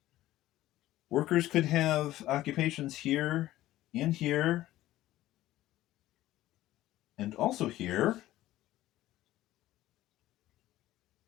Workers could have occupations here and here and also here.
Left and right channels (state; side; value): quieter; right; 15.2 dB